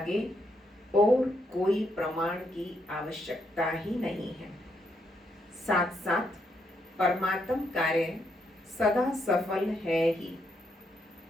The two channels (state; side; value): normal; both; correlation 0.77